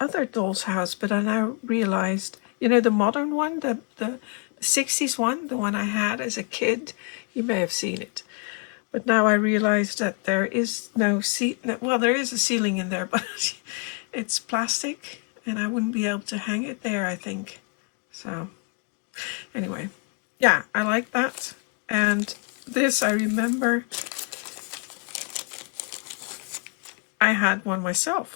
doll's house, but I now realized, you know, the modern one, the 60s one, the one I had as a kid. You may have seen it. But now I realize that there is no well, there is a ceiling in there, but it's plastic and I wouldn't be able to hang it there, I think. So anyway, yeah, I like that. And this, I remember I had one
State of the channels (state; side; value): quieter; right; 34.4 dB